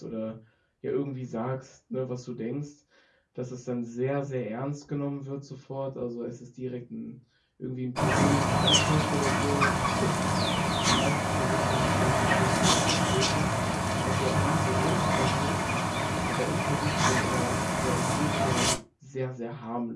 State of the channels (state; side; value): identical; both; correlation 1.00